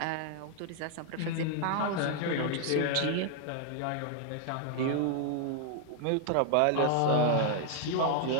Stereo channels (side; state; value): both; different; correlation 0.00